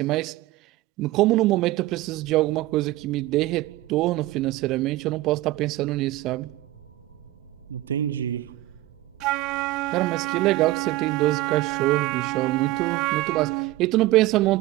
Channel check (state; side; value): quieter; left; 17.4 dB